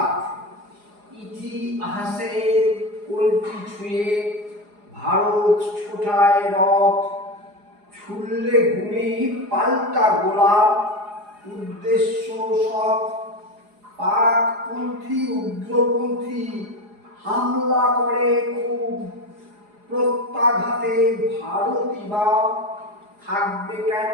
ইতিহাসের কলটি ছুঁয়ে ভারত ছোটায় রথ, ছুড়লে গুলি পাল্টা গোলা, উদ্দেশ্য সৎ। পাকপন্থী উগ্রপন্থী হামলা করে খুব, প্রত্যাঘাতে ভারতই বা থাকবে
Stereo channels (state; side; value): late; left; 4.8 ms